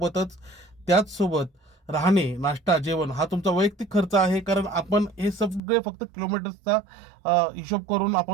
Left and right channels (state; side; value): drops out; left; at 5.6 s